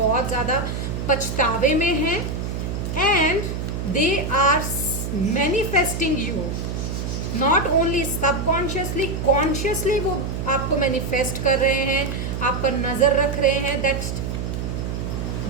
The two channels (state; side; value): noise; right; hum, 4 dB below the sound